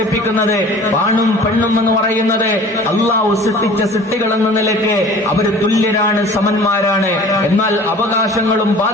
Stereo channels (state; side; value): normal; both; correlation 0.45